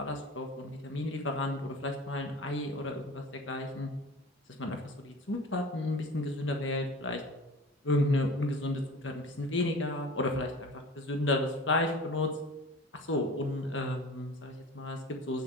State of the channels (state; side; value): normal; both; correlation 0.39